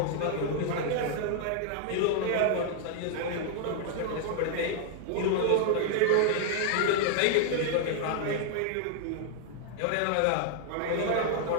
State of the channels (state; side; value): different; both; correlation -0.01